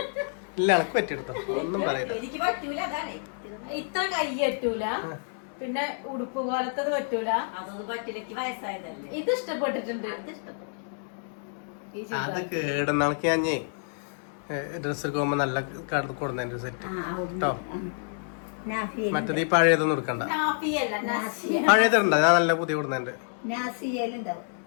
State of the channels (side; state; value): right; silent; digital silence